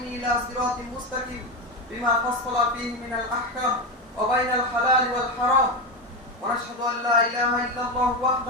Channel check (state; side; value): normal; both; correlation 0.15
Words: إلى صراط مستقيم بما فصل فيه من الأحكام وبين الحلال والحرام. ونشهد أن لا إله إلا الله